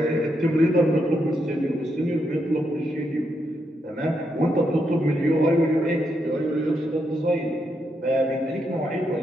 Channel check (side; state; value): both; normal; correlation 0.81